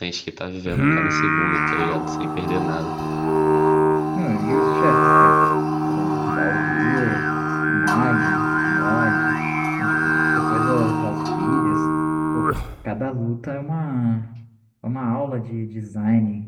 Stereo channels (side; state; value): both; identical; correlation 1.00